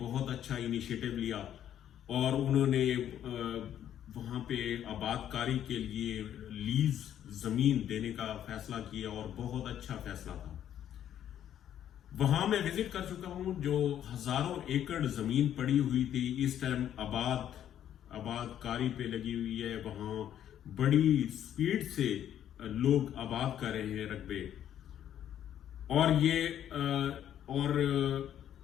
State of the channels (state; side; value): quieter; right; 10.5 dB